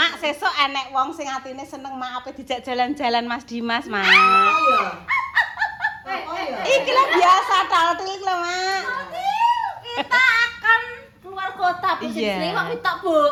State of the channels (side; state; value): both; identical; correlation 1.00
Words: sesuk enek wong sing atine seneng mak ape dijak jalan-jalan Mas Dimas, Mak. Iki lah biasa taltil iki lho, Mak. Kita akan keluar kota Iya. posisi waktu tak Bu.